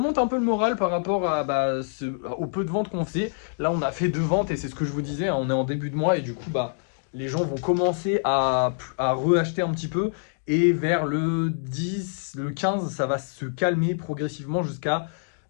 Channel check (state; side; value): silent; right; digital silence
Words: un peu le moral par rapport à, au peu de ventes qu'on faisait. Là, on a fait 2 ventes et c'est ce que je vous disais, hein, on est en début de mois et du coup, les gens vont commencer à reacheter un petit peu. Et vers le 10, le 15, ça va se calmer progressivement jusqu'à